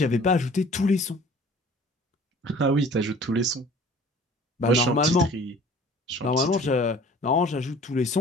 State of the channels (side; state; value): both; normal; correlation 0.48